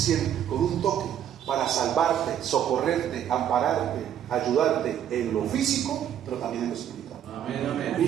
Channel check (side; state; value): left; quieter; 10.1 dB